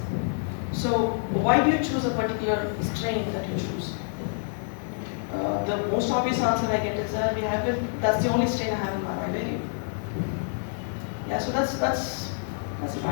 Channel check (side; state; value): right; silent; digital silence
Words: So why do you choose a particular strain that you choose? The most obvious answer I get is that that's the only strain I have in my vivarium. Yeah, so that's a bad